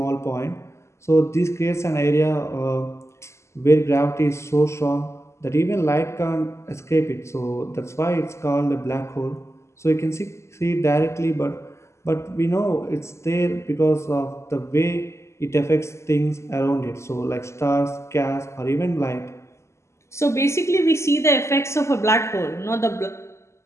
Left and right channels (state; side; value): late; right; 0.13 ms